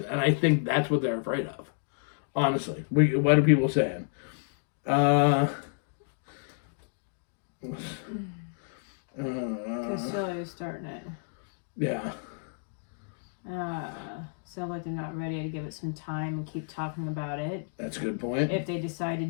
and I think that's what they're afraid of. Honestly, what are people saying? Castillo's starting it. Yeah. Sounds like they're not ready to give it some time and keep talking about it. That's a good point. If they decide to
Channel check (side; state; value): right; silent; digital silence